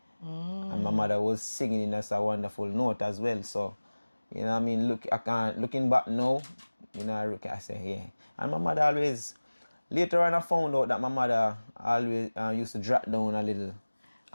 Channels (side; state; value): both; inverted; correlation -1.00